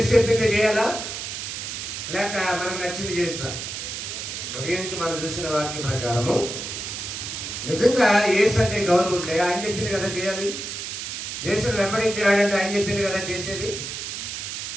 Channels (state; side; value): noise; right; hiss, 6 dB below the sound